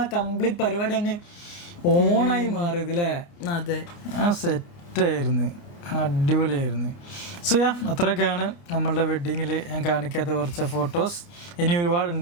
ആ കംപ്ലീറ്റ് പരിപാടി അങ്ങ് ഓണായി മാറിയത് അല്ലേ. അതെ, സെറ്റായിരുന്നു, അടിപൊളിയായിരുന്നു. സോ അത്രയൊക്കെയാണ് നമ്മളുടെ വെഡ്ഡിങ്ങിൽ ഞാൻ കാണിക്കാത്ത കുറച്ച് ഫോട്ടോസ്. ഇനി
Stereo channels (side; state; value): right; late; 29 ms